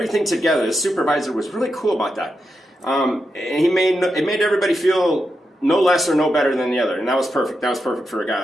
together. The supervisor was really cool about that. And it made everybody feel no less or no better than the other, and that was perfect. That was perfect for a guy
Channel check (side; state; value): both; normal; correlation 0.87